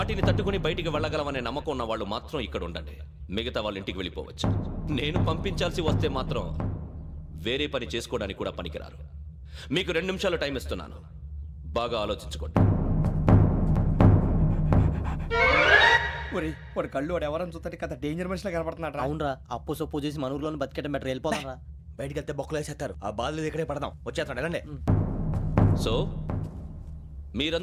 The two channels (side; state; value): both; identical; correlation 1.00